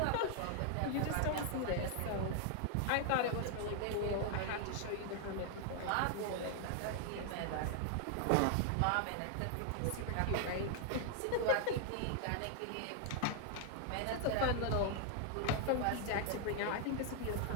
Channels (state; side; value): different; both; correlation 0.00